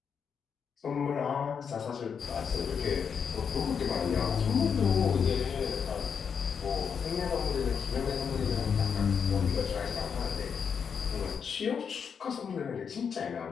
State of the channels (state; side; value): quieter; right; 6.8 dB